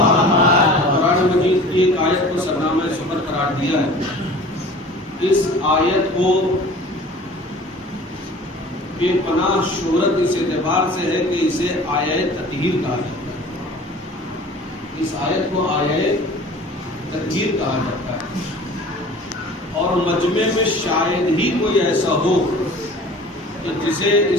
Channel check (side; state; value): both; normal; correlation 0.44